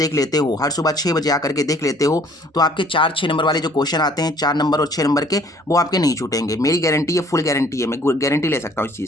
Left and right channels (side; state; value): both; normal; correlation 0.58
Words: लेते हो, हर सुबह 6 बजे आकर के देख लेते हो, तो आपके 4-6 नंबर वाले जो क्वेश्चन आते हैं, 4 नंबर और 6 नंबर के, वो आपके नहीं छूटेंगे। मेरी गारंटी है, फुल गारंटी है, मैं गारंटी ले सकता हूँ इस